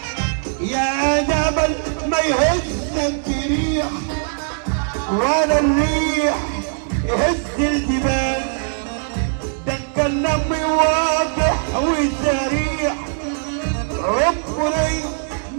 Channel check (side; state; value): left; silent; digital silence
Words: يا جبل ما يهزك ريح ولا الريح يهز الجبال، ده الكلام واضح وسريع، عمري